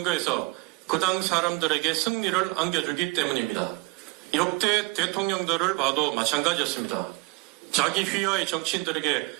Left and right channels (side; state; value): left; quieter; 27.8 dB